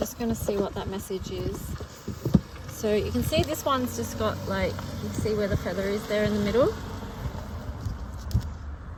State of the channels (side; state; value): both; identical; correlation 1.00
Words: going to see what that message is. So you can see this one's just got, like, you see where the feather is there in the middle.